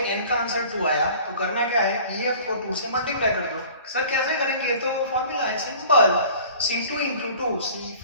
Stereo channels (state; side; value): inverted; both; correlation -0.46